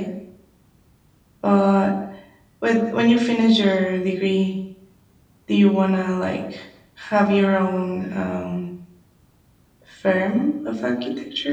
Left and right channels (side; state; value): both; identical; correlation 1.00